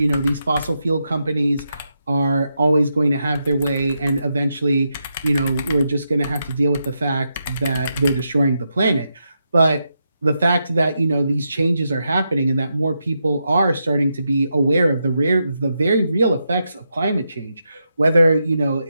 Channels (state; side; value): inverted; both; correlation -0.85